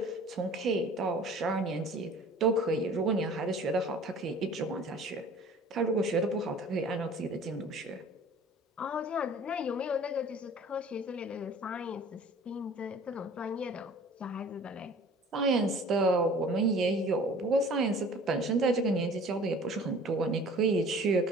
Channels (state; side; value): normal; both; correlation 0.47